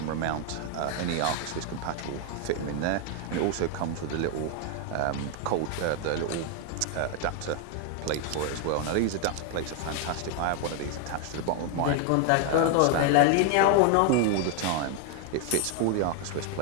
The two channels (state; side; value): different; both; correlation 0.00